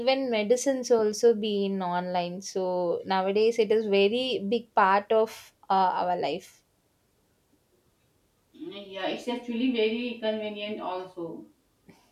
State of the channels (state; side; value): identical; both; correlation 1.00